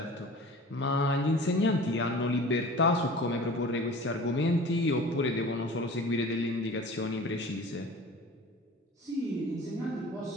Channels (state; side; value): normal; both; correlation 0.41